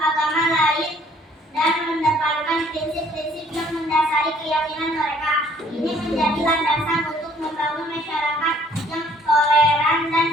lain dan mendapatkan prinsip-prinsip yang mendasari keyakinan mereka. Ini menjadi landasan untuk membangun masyarakat yang toleran dan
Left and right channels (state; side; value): normal; both; correlation 0.60